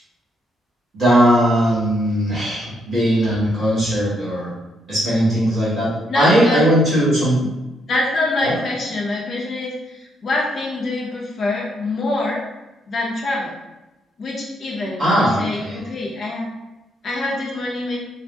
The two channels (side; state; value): both; normal; correlation 0.75